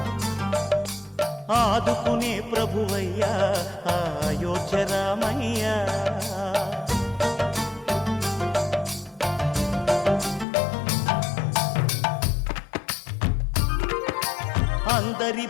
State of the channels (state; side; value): drops out; right; at 10.5 s